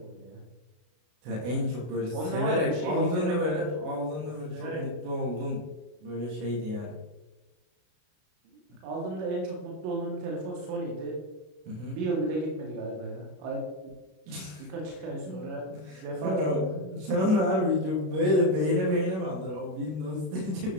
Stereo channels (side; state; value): left; late; 33 ms